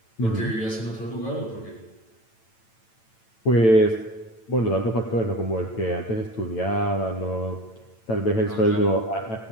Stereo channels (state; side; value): late; right; 8.9 ms